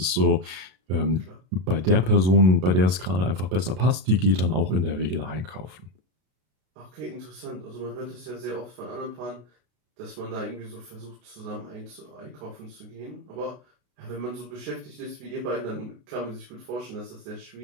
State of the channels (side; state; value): left; late; 32 ms